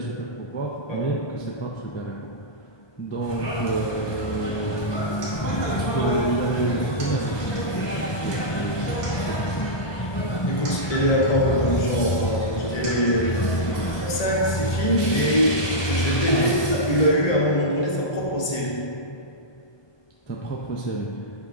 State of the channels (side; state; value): right; late; 1.2 ms